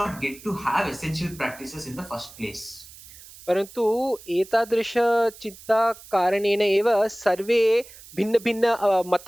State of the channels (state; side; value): noise; right; hiss, 19 dB below the sound